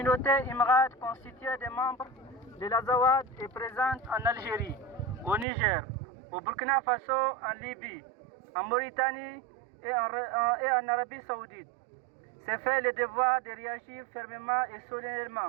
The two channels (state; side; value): drops out; left; at 5.5 s